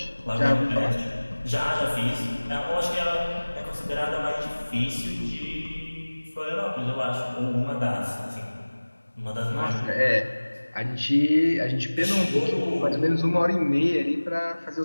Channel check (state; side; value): inverted; both; correlation -1.00